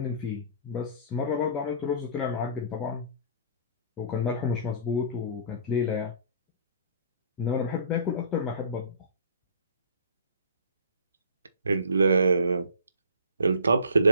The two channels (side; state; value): both; inverted; correlation -0.47